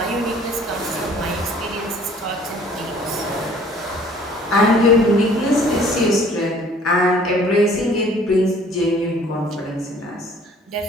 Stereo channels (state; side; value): normal; both; correlation 0.54